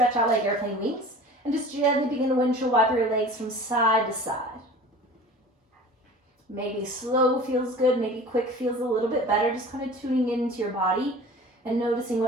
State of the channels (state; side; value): normal; both; correlation 0.41